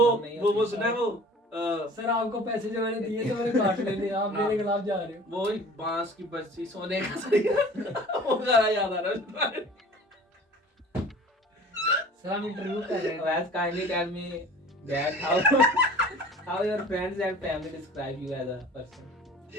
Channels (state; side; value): normal; both; correlation 0.44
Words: नहीं वो होती। सुना है वो सर आपको पैसे जो मैंने दिए थे मैंने काट लेने, आप मेरे खिलाफ जा रहे हो। वो बांस की बरसी सोने का सरिया वो गाना याद आ रहा है। सर हम इंटरव्यू कर रहे हैं। Wes, kindly tell me that how your friends and family describe you as a person.